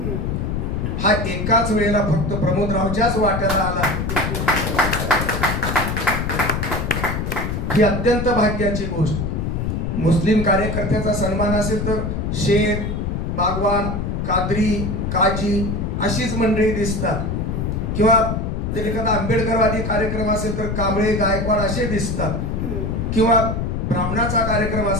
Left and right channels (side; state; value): left; noise; rumble, 2 dB below the sound